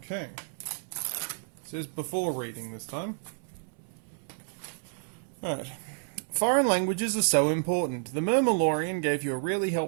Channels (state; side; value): silent; left; 57 dB below the other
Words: Okay. It says before reading this time. Alright. Foreign languages are so important. The Murmilorian gave you a really